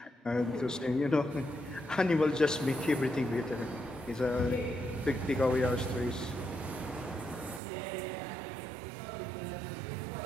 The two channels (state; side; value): drops out; left; at 7.6 s